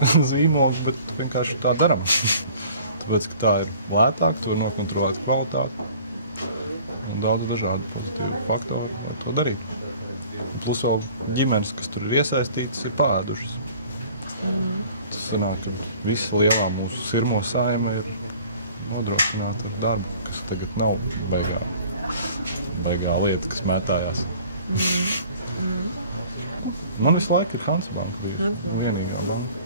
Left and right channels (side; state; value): both; inverted; correlation -0.50